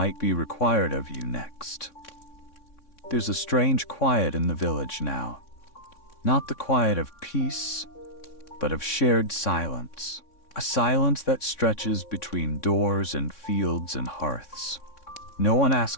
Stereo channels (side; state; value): right; late; 3.6 ms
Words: be required of you next. There's a strange quiet in the village now. Not the quiet of peace, but of shared silence. A silence that stretches between doors and fields and hearths. No one